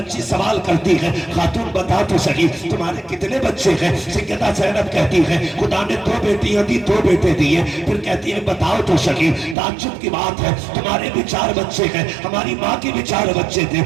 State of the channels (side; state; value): left; drops out; at 9.6 s